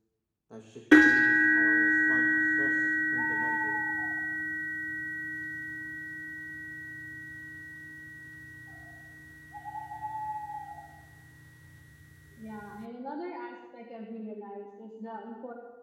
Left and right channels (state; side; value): identical; both; correlation 1.00